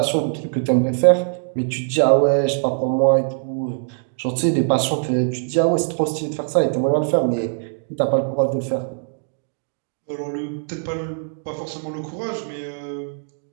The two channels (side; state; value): left; silent; digital silence